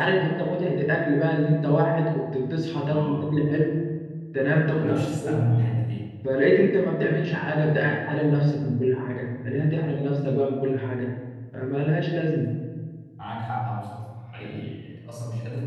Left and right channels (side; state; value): both; identical; correlation 1.00